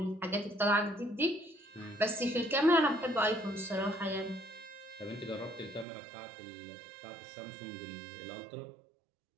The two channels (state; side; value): drops out; left; at 5.9 s